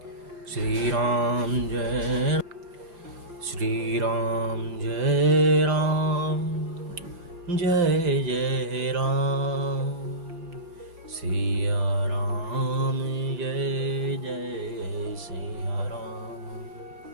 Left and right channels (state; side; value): late; left; 5.8 ms